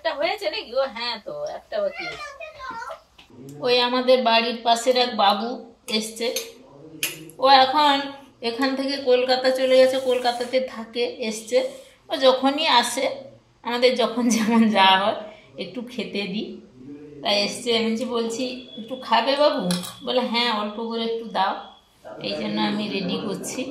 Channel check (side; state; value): both; identical; correlation 1.00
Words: হয়েছে নাকি? ও হ্যাঁ, তো একটা বাকি আছে। ওই আমাদের বাড়ির পাশের এক বাবু এসছে, ও এখন এখান থেকে কলকাতা চলে গেছে, কলকাতাতে থাকে, এসছে। ও যখনই আসে, আমাদের যখন যেমন যাওয়া হয়, একটু খেতে দিই, তাই এসছে। আমি বলছি একটু খাবে বাবু? বলে হ্যাঁ অল্প করে একটু দাও। এই জন্য আমি রেডি করছি।